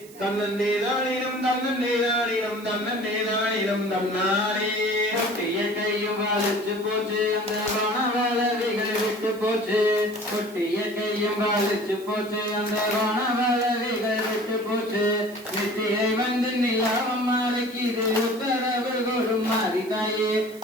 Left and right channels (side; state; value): right; noise; hiss, 21 dB below the sound